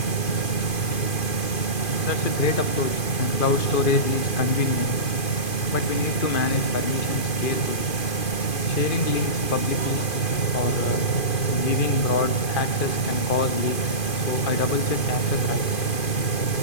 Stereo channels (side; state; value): right; late; 2.5 ms